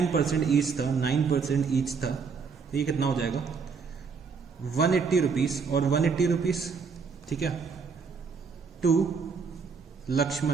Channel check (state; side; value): quieter; left; 5.4 dB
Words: ईच था, 9% ईच था, तो ये कितना हो जाएगा 180 रुपीज़ और 180 रुपीज़, ठीक है, to